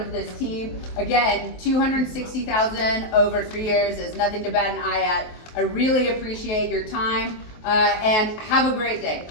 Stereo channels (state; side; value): late; right; 23 ms